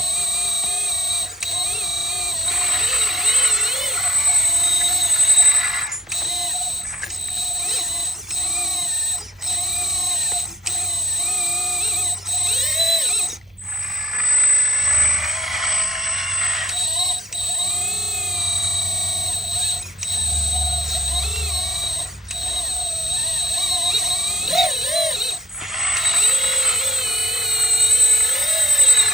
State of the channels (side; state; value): both; normal; correlation 0.73